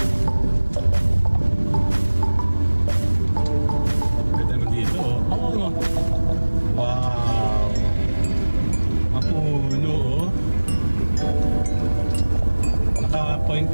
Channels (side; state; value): both; inverted; correlation -1.00